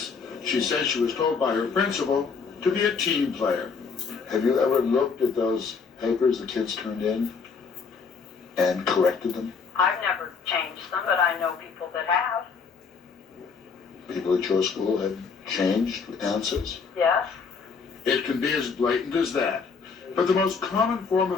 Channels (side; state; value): right; quieter; 5.4 dB